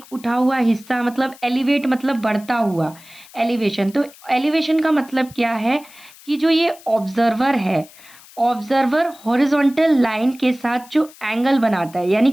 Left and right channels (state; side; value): noise; left; hiss, 22 dB below the sound